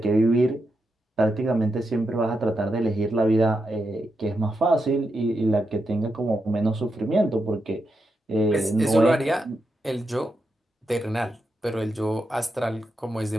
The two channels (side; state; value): both; normal; correlation 0.85